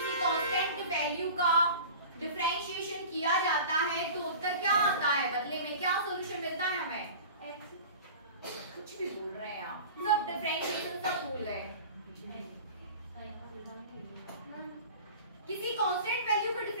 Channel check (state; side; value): inverted; both; correlation -0.38